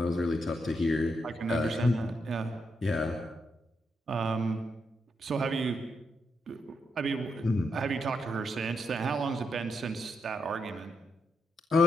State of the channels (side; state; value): both; normal; correlation 0.81